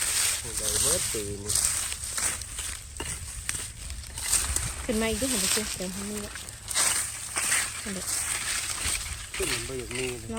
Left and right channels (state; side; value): identical; both; correlation 1.00